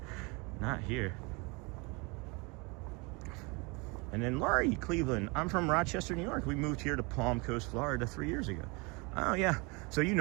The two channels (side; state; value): left; quieter; 28.8 dB